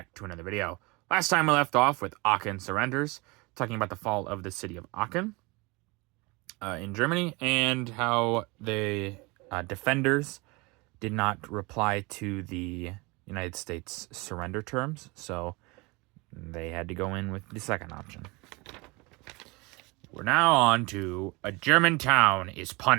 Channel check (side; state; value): left; quieter; 25.7 dB